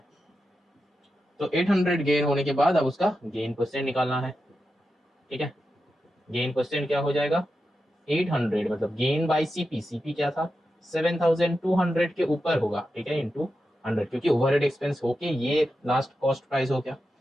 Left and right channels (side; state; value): both; normal; correlation 0.89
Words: तो 800 गेन होने के बाद अब उसका गेन परसेंट निकालना है, ठीक है। गेन परसेंट क्या हो जाएगा 800 मतलब गेन बाय सीपी, सीपी क्या था 7200 के ऊपर होगा, ठीक है, इंटू 100, क्योंकि ओवरहेड एक्सपेंस होके ये लास्ट कॉस्ट प्राइस हो गया,